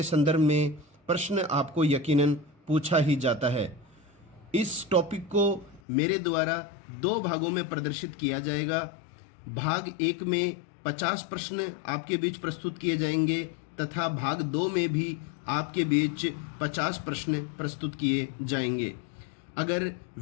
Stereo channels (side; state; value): right; drops out; at 5.8 s